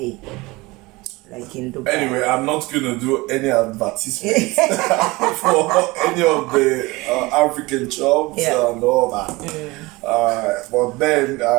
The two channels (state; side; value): quieter; left; 22.5 dB